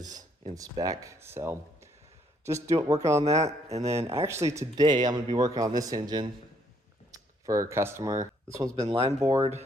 in spec. So just working on that. And then actually today I'm gonna be working on this engine for a customer. This one's been line bored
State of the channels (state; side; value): normal; both; correlation 0.68